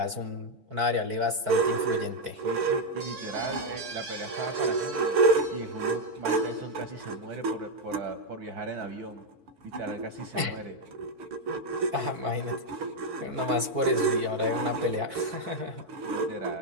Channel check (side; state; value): left; late; 4.5 ms